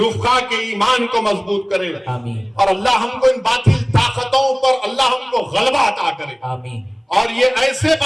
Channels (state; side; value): identical; both; correlation 1.00